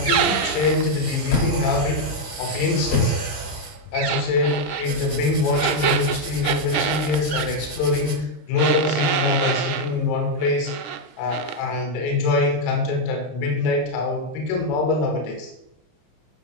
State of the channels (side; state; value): right; late; 26 ms